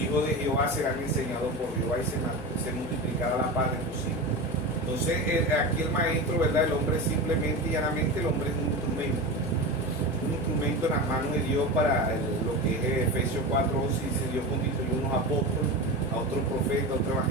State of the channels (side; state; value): both; normal; correlation 0.25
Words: hijos de Jehová serán enseñados por Jehová, y se multiplicará la paz de tus hijos. Entonces, aquí el maestro, ¿verdad? El hombre simplemente y llanamente, el hombre es un instrumento en las manos de Dios para lo que es Efesios 4:11. Dice: Dios constituyó unos apóstoles, a otros profetas, a otros